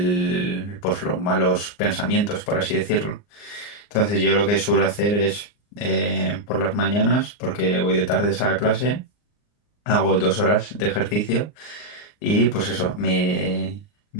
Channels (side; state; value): right; late; 39 ms